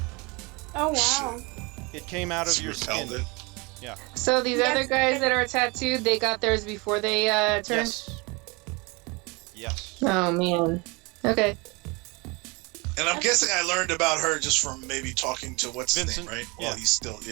Oh wow. It came out of your skin. Repelled it. Yeah. So these Yes. other guys that are tattooed, they got theirs before they turned? Yes. Oh, man. Okay. And I'm guessing I learned about her just from maybe talking to what's his Vincent, name, right? yeah. Well, he's still,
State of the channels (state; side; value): quieter; left; 27.5 dB